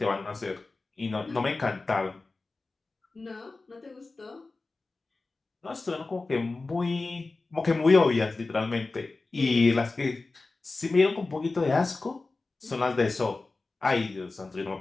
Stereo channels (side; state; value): right; quieter; 3.5 dB